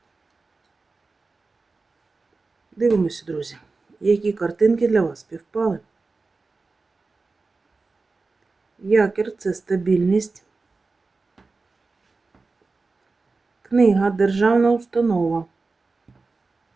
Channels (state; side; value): quieter; left; 3.9 dB